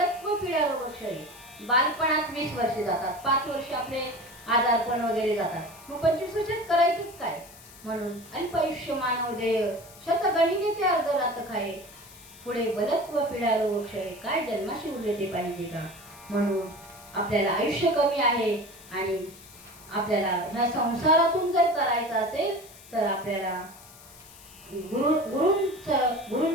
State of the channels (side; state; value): left; noise; hiss, 20 dB below the sound